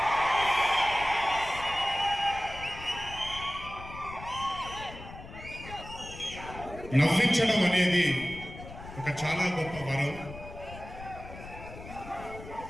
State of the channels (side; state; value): left; noise; rumble, 14 dB below the sound